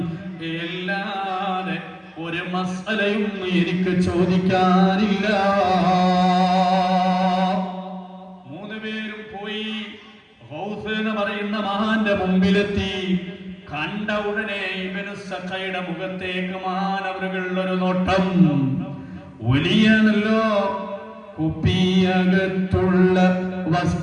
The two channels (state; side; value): identical; both; correlation 1.00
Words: എല്ലാതെ ഒരു മസ്അലയും എനിക്ക് ചോദിക്കാനില്ല. മൂന്നുപേരും പോയി ഗൗസ് എന്ന് പറയുന്ന മഹാന്റെ മുമ്പിലെത്തി. കണ്ട ഉടനെ ഇബ്നു സഖയുടെ മുഖത്തേക്ക് മഹാനവറുകൾ ഒരു നോട്ടം. വലിയാണല്ലോ, കുപ്പിയകത്തുള്ള